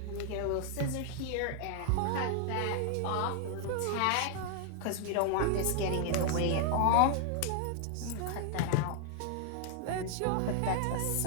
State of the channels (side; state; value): both; different; correlation 0.00